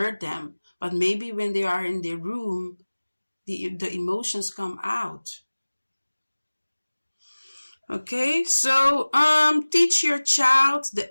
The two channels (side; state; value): both; inverted; correlation -1.00